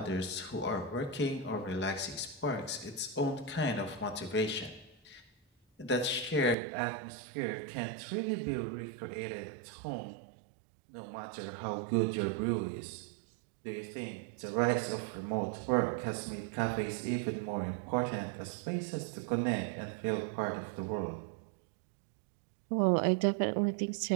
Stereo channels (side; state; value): left; drops out; at 6.6 s